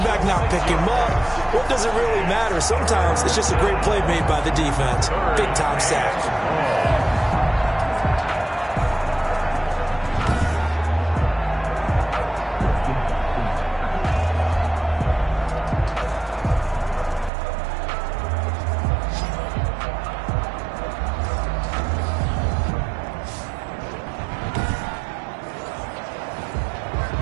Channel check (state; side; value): drops out; left; at 17.3 s